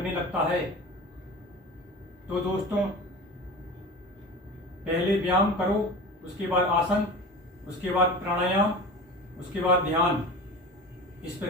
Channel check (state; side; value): normal; both; correlation 0.33